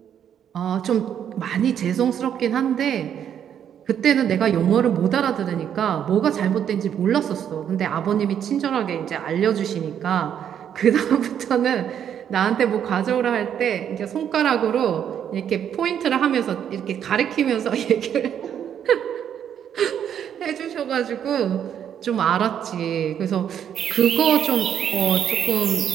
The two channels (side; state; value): left; quieter; 9.1 dB